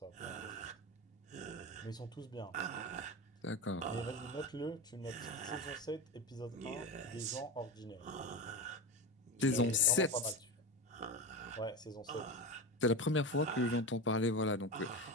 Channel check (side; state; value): both; normal; correlation 0.22